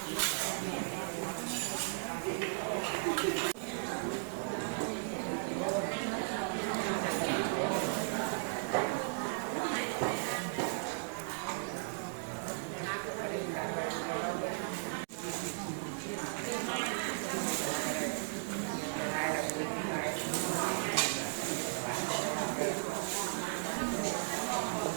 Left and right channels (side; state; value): left; silent; digital silence